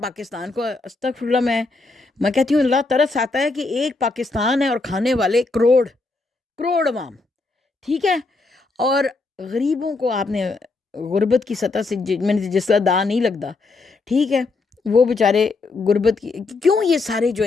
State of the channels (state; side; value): quieter; right; 3.6 dB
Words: پاکستان کو. استغفر اللہ, میں کہتی ہوں اللہ ترس آتا ہے کہ ایک پاکستان ہے اور کھانے والے کروڑ عوام. ٹھیک ہے. اور غریبوں کو آپ نے غربت کی سطح سے میں نے جس کا دا نہیں لگتا, ٹھیک ہے, وہ بیچارے غربت کی کیوں یہ سارے جو